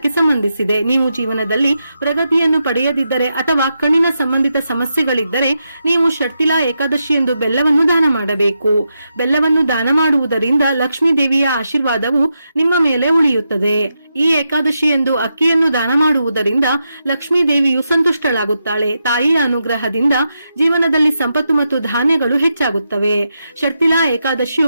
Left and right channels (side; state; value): both; inverted; correlation -0.85